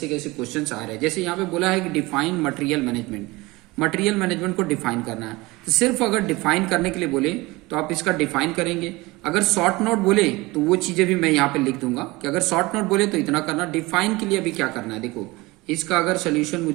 कैसे क्वेश्चंस आ रहे हैं। जैसे यहाँ पे बोला है कि define material management. Material management को डिफाइन करना है, तो सिर्फ अगर डिफाइन करने के लिए बोले तो आप इसका डिफाइन करेंगे। अगर शॉर्ट नोट बोले तो वो चीजें भी मैं यहाँ पे लिख दूंगा कि अगर शॉर्ट नोट बोले तो इतना करना। डिफाइन के लिए अभी क्या करना है, देखो इसका अगर सोल्यूशन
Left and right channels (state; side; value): quieter; left; 22.0 dB